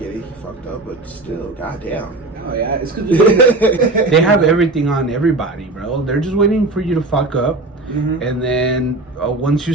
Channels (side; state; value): left; quieter; 3.0 dB